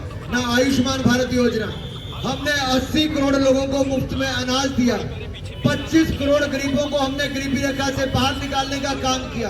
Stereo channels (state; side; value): identical; both; correlation 1.00